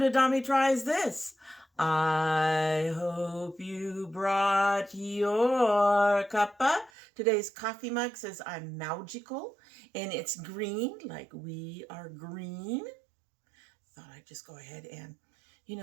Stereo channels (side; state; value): left; drops out; at 6.9 s